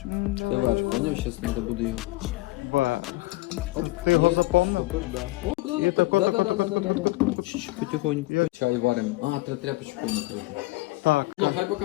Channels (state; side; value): quieter; right; 20.6 dB